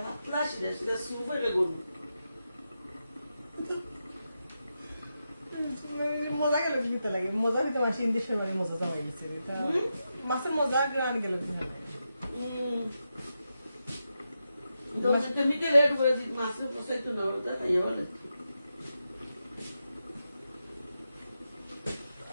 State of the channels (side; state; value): both; inverted; correlation -0.88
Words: পাতলা শিরা শিরা সুপ হয়ে গরু মজা গেল দিতে লাগে মজা দিতে মাসে ইন্দেশের বাড়ি মজা যাওয়া গেছে মাছের মজা গ্রাম গেল মিটে রেড করে মাছের পোষাইতো না ওটা খাইয়া বলে